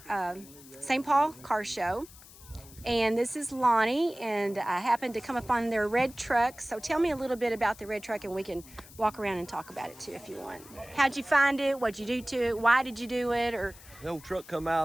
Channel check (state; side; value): noise; left; hiss, 20 dB below the sound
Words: St. Paul Car Show, and this is Lonnie, and I happened to come up on their red truck. So tell me a little bit about the red truck, and we can walk around and talk about it too if you want. How'd you find it? What'd you do to it? Why did you do it? Or The old truck come out